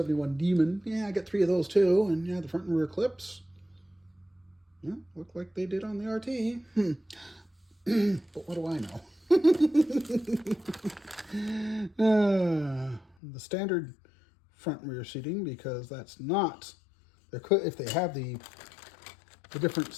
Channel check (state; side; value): drops out; right; at 13.2 s